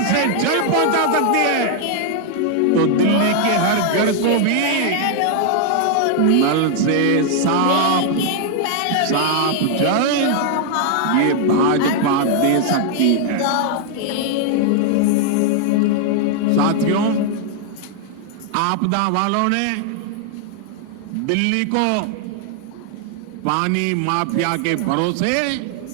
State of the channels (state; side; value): different; both; correlation 0.00